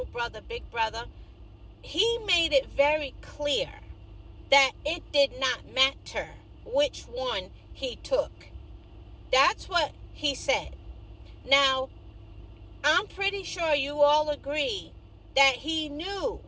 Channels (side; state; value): both; identical; correlation 1.00